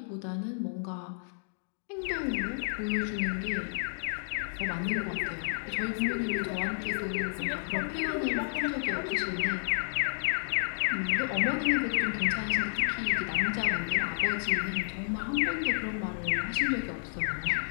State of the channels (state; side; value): silent; right; digital silence